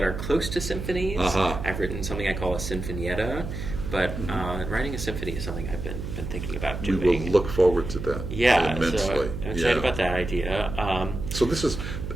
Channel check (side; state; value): right; noise; hum, 6 dB below the sound